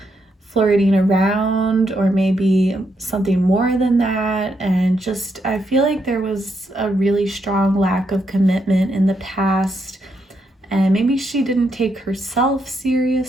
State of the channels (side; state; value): both; normal; correlation 0.79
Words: flirting around, or maybe something more than that. And just, I feel like there was a really strong lack of commitment in the past, and maybe she didn't take herself